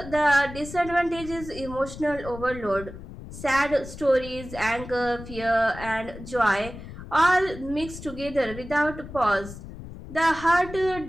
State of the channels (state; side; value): noise; left; rumble, 13 dB below the sound